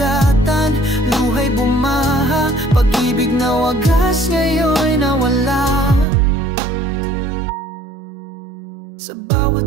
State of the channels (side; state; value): left; drops out; at 6.1 s